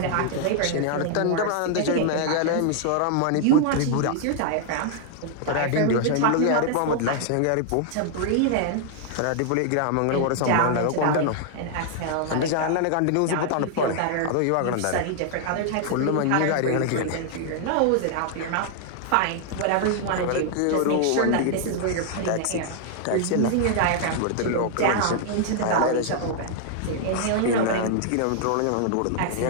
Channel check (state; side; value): different; both; correlation 0.00